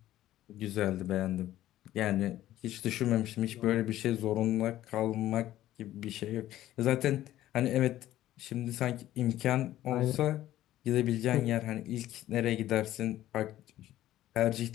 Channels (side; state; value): right; quieter; 13.9 dB